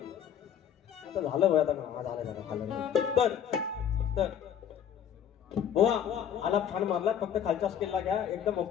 आता झालं आता का झालं. तर बुवा आलाप छान मारला. फक्त खालच्या स्केलला घ्या एकदम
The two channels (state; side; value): quieter; right; 9.0 dB